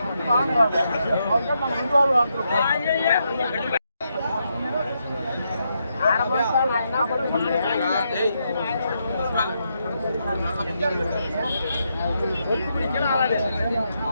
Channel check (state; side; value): inverted; both; correlation -0.81